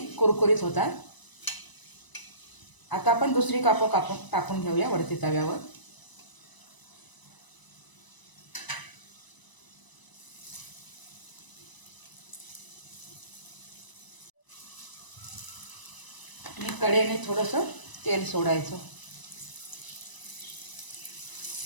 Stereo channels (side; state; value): right; late; 1.0 ms